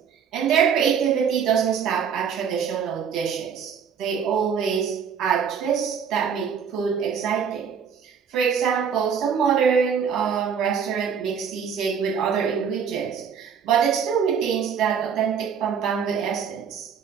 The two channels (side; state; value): left; quieter; 7.1 dB